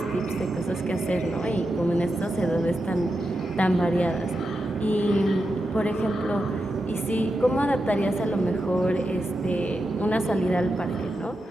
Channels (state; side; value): normal; both; correlation 0.88